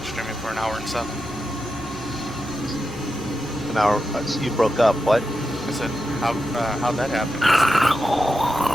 streaming for an hour and 7. An hour, so you broke up, what? I said, how'd that happen?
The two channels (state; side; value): normal; both; correlation 0.89